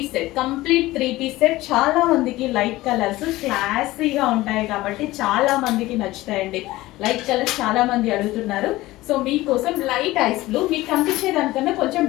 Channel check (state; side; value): quieter; right; 18.0 dB